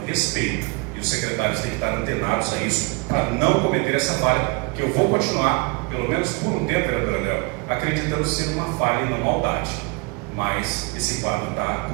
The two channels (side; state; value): left; quieter; 29.4 dB